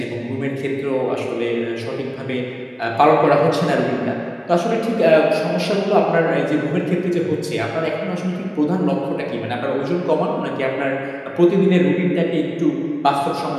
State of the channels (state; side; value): identical; both; correlation 1.00